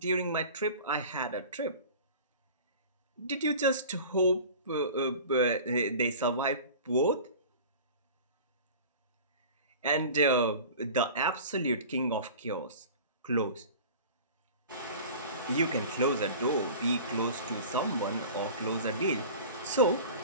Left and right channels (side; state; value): both; inverted; correlation -0.39